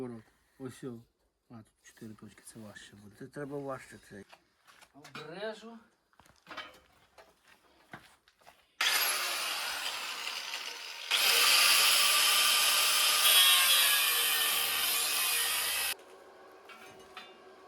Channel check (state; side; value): identical; both; correlation 1.00